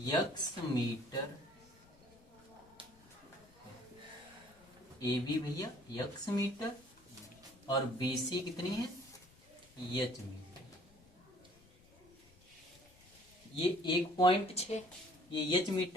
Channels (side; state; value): left; noise; rumble, 27 dB below the sound